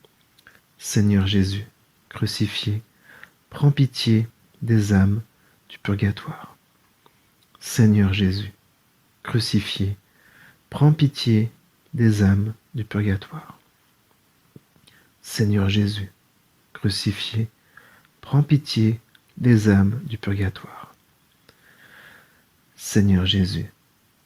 Seigneur Jésus, crucifié, prends pitié des âmes du purgatoire. Seigneur Jésus, crucifié, prends pitié des âmes du purgatoire. Seigneur Jésus, crucifié, prends pitié des âmes du purgatoire. Seigneur Jésus,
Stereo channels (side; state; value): both; identical; correlation 1.00